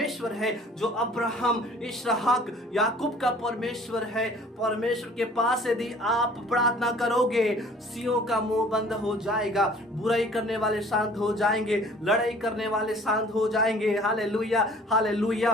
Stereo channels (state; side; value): normal; both; correlation 0.52